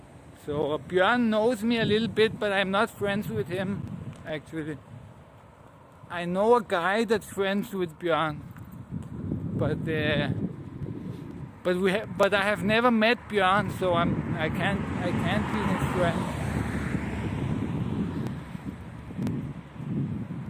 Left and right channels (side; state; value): both; identical; correlation 1.00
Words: So Björn knows me a little bit, but I'm not friends with him, actually. I know a guy that's friends with Björn, but I have never met Björn, so I can't be his friend.